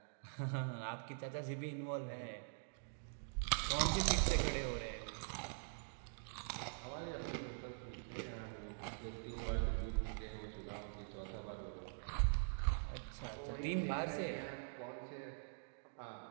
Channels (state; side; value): silent; left; digital silence